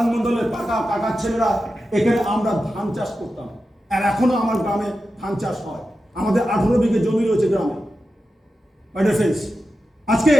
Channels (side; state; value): both; normal; correlation 0.91